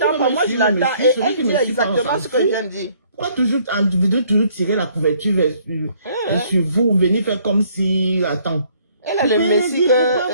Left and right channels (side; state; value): both; inverted; correlation -0.63